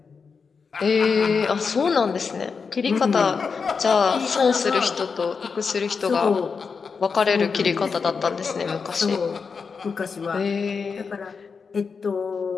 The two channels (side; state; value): right; quieter; 5.4 dB